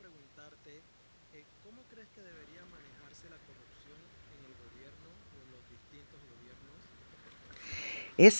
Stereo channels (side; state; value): both; inverted; correlation -1.00